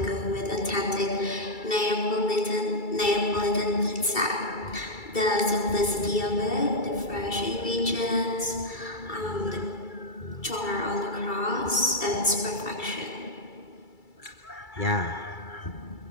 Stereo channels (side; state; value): right; late; 2.3 ms